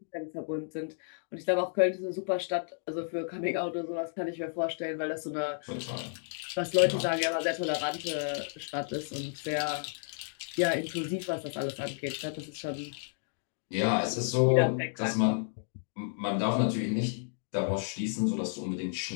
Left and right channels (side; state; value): right; silent; digital silence